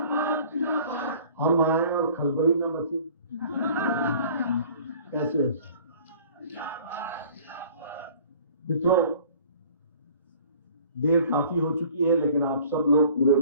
हम आए और खलबली न मची, कैसे मित्रों, देर काफी हो चुकी है लेकिन आप सब लोग पूरे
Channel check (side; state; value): both; inverted; correlation -0.50